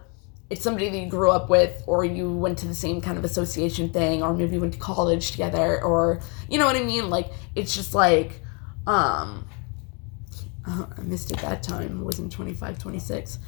it's somebody that you grew up with, or you went to the same kind of association thing, or maybe you went to college together, or you know what I mean? Like it's just like I missed it that time. It was in 25, 26.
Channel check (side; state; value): right; quieter; 34.5 dB